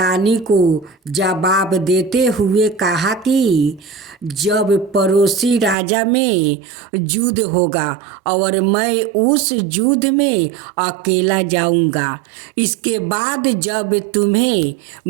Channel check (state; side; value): drops out; left; at 5.8 s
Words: को जवाब देते हुए कहा कि जब पड़ोसी राजा में युद्ध होगा और मैं उस युद्ध में अकेला जाऊंगा, इसके बाद जब तुम्हें